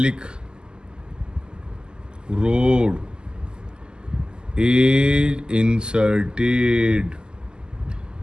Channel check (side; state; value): left; late; 0.047 ms